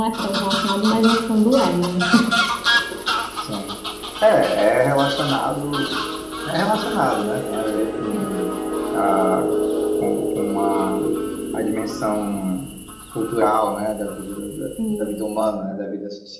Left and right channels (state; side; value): identical; both; correlation 1.00